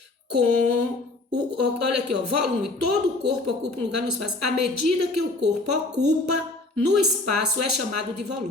com, olha aqui, ó, volume, todo o corpo ocupa um lugar no espaço. A medida que o corpo ocupa no espaço é chamado de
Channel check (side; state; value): right; quieter; 3.0 dB